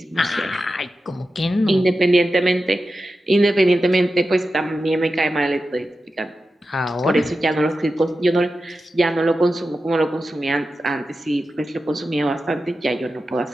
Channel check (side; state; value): both; normal; correlation 0.92